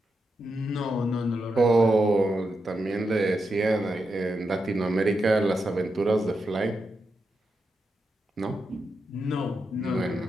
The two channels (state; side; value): normal; both; correlation 0.86